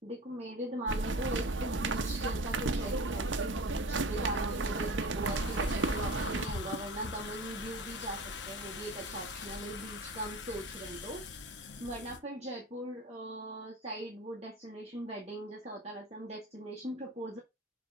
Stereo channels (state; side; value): normal; both; correlation 0.35